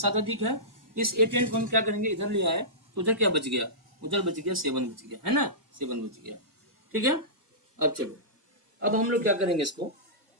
अधिक है। इस A10 को हम क्या करेंगे, इधर ले आए, तो उधर क्या बच गया, उधर बच गया 7 बच गया, है ना, 7 बच गया, ठीक है। अब चलो, अब हम लोग क्या करेंगे, इसको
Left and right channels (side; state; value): left; late; 1.7 ms